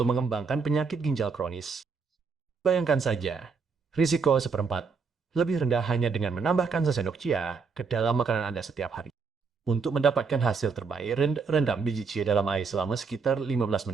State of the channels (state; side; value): quieter; left; 5.1 dB